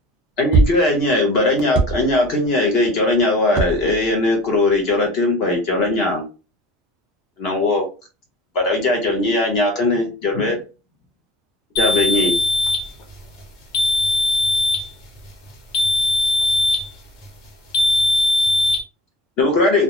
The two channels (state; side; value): normal; both; correlation 0.40